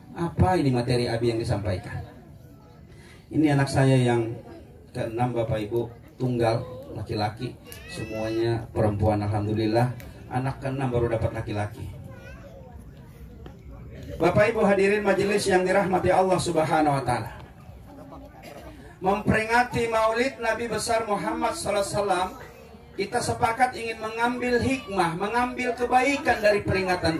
Apa ini materi Abi yang disampaikan? Ini anak saya yang ke-6, Bapak Ibu, tunggal, laki-laki. Semuanya perempuan, alhamdulillah. Anak ke-6 baru dapat laki-laki. Bapak Ibu hadirin majelis yang dirahmati Allah Subhanahu wa Ta'ala, memperingati Maulid Nabi besar Muhammad SAW, kita sepakat ingin mengambil hikmah, mengambil kebaikan dari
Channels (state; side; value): identical; both; correlation 1.00